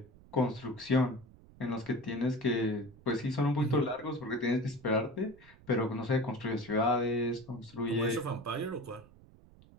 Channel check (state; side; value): noise; right; rumble, 23 dB below the sound